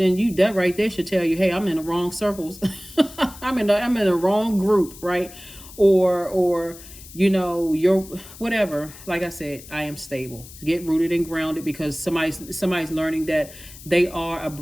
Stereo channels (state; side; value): noise; left; hiss, 18 dB below the sound